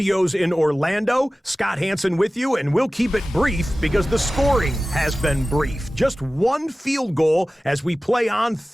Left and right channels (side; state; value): both; normal; correlation 0.96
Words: in Orlando. Scott Hanson with you, and we'll keep it brief because the scoring has been brief. Just one field goal as we play on